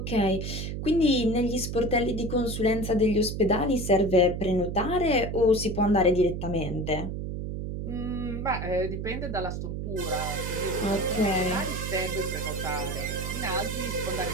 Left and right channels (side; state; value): right; noise; hum, 4 dB below the sound